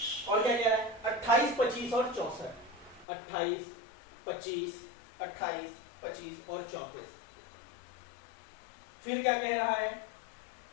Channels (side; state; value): right; drops out; at 3.1 s